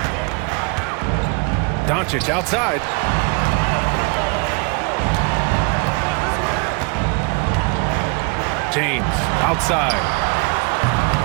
Doncic outside. James outside.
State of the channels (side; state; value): left; quieter; 32.0 dB